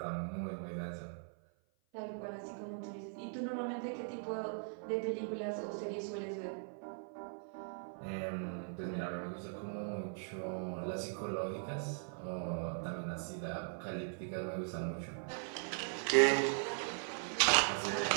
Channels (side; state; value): left; silent; 51 dB below the other